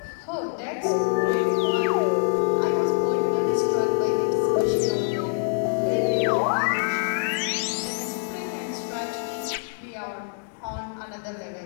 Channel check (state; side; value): silent; right; 62 dB below the other